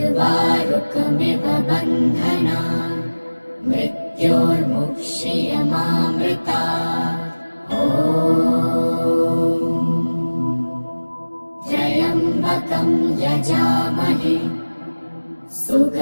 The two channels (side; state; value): both; inverted; correlation -1.00